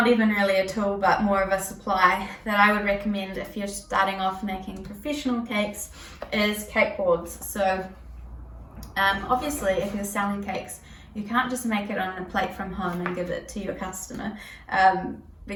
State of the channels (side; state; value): both; identical; correlation 1.00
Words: even really a tool but more of a supply that I would recommend if you're starting off making professional cakes, is cake boards. So obviously if you're selling cakes, you can't just make it on a plate from home and give it to your customer,